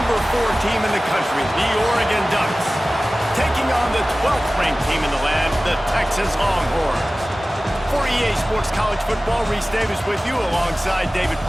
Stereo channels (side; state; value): both; normal; correlation 0.97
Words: 4 team in the country, the Oregon Ducks, taking on the 12th ranked team in the land, the Texas LongHorns. For EA Sports College Football, Reese Davis with you alongside David